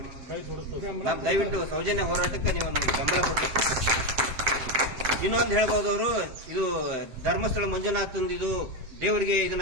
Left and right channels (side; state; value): left; late; 7.8 ms